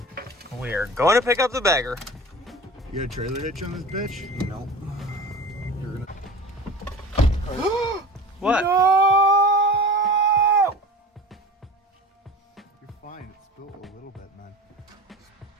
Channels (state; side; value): normal; both; correlation 0.36